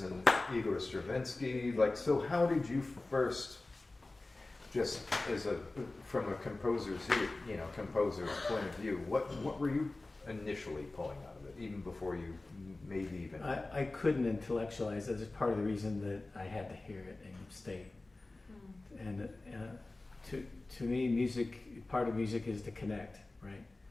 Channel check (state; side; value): quieter; right; 3.1 dB